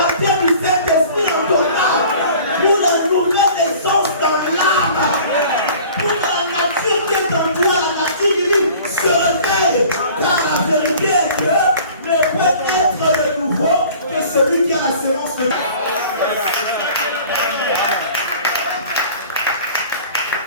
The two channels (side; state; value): both; inverted; correlation -0.47